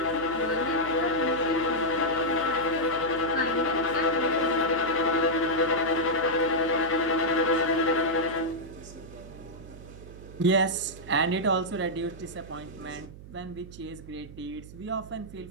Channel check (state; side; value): noise; right; hum, 16 dB below the sound